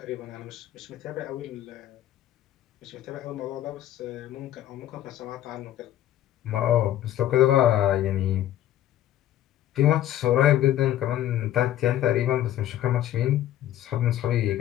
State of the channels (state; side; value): quieter; right; 12.4 dB